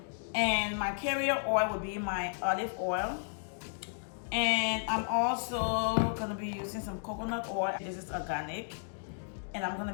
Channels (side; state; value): right; silent; digital silence